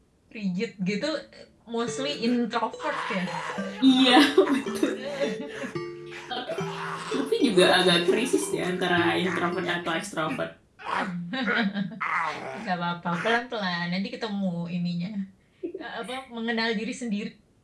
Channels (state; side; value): identical; both; correlation 1.00